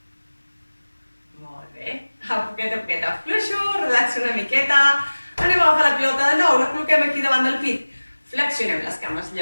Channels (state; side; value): inverted; both; correlation -1.00